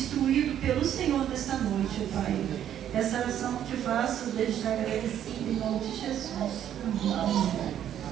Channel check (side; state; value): left; quieter; 10.4 dB